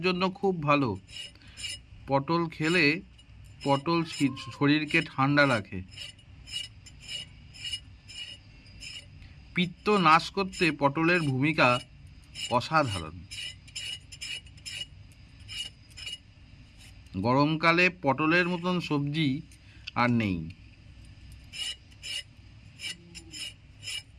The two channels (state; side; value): identical; both; correlation 1.00